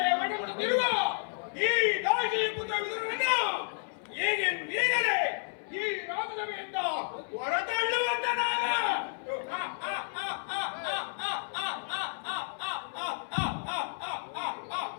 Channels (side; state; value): right; silent; 57 dB below the other